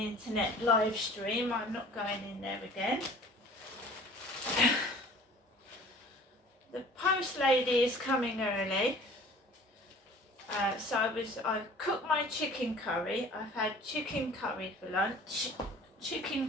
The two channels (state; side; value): normal; both; correlation 0.48